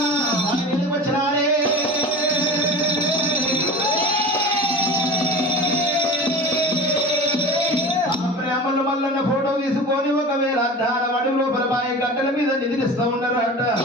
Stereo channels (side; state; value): both; normal; correlation 0.33